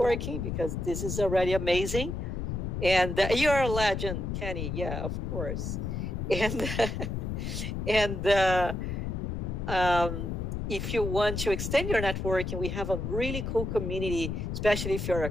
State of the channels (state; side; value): noise; left; rumble, 3 dB below the sound